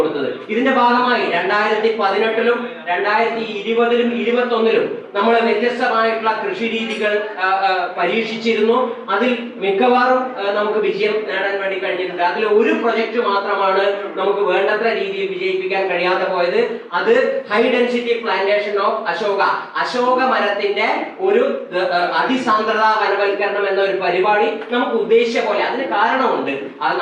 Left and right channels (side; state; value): both; identical; correlation 1.00